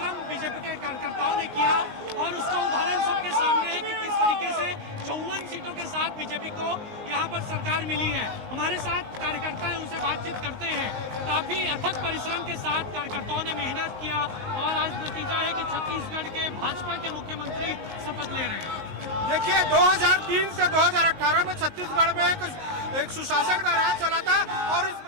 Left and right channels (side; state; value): left; late; 15 ms